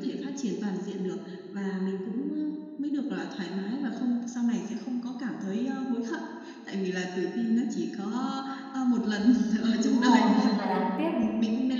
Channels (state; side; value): identical; both; correlation 1.00